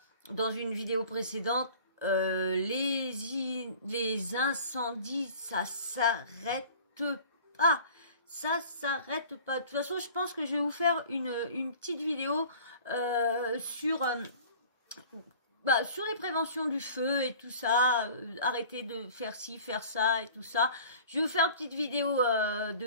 dans une vidéo précédente, les incendies, ça s'arrête pas. Ça s'arrête pas. De toute façon, je pense que je vais vous faire une petite vidéo sur les préventions du feu et tout ça, arrêter de faire ci, faire ça et tout ça. Je vais vous faire une petite vidéo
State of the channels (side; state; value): both; inverted; correlation -0.45